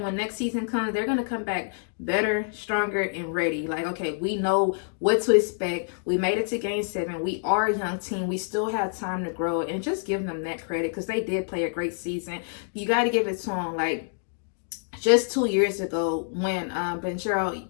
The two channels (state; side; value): silent; right; digital silence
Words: when next season comes, they're going to come back better, stronger, and ready. Like, okay, we know what to expect. We made it to game 7. We are a young team. We still have time to grow. And just give them that credit because they did play a great season. You got to give it to them. Like, just 2 years ago when Banchero